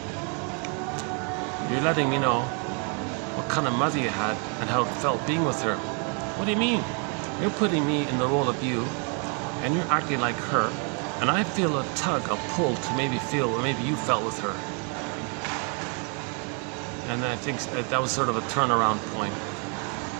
"You're letting me know what kind of mother you had and how it felt being with her." "What do you mean?" "You're putting me in the role of you and you're acting like her, and I feel a tug, a pull to maybe feel what maybe you felt with her." And I think that was sort of a turnaround point.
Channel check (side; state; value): left; quieter; 37.6 dB